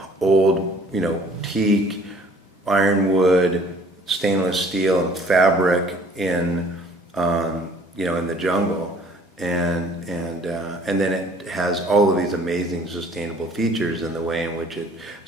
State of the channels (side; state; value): both; normal; correlation 0.55